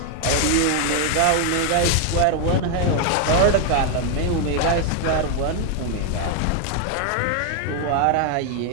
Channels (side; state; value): both; different; correlation 0.00